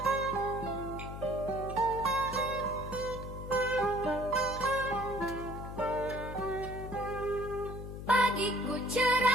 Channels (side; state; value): left; noise; hum, 9 dB below the sound